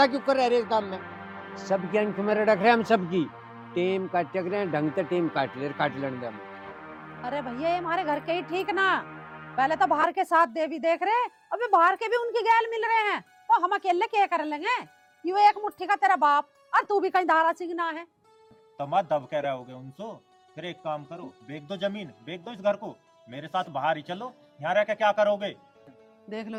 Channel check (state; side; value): identical; both; correlation 1.00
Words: क्यों कर रहे काम में, सबकी अंक में रख रहे हम, सबकी टेम काट रहे हैं, ढंग से टेम काट लेंगे हम। अरे भैया ये हमारे घर के ही ठीक ना, पहले तो बाहर के साथ दे भी देख रहे, अभी बाहर के भी उनकी गैल मिल रहे हैं, तो हम अकेले क्या कर लेंगे? यू एक मुट्ठी का तेरा बाप, और तू भी कहीं धारा सिंगना है। तो मत दब कह रहे होगे उनसे। फिर एक काम करो, बेच दो जमीन, बेच दो इस घर को, मेरे साथ बाहर ही चलो, यहाँ रह के क्या करोगे? देख लो